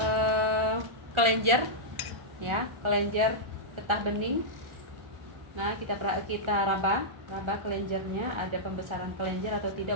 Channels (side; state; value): left; late; 1.4 ms